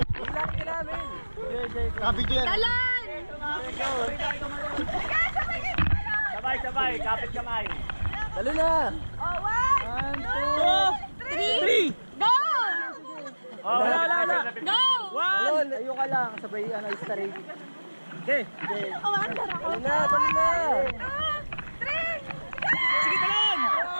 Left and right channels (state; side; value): inverted; both; correlation -1.00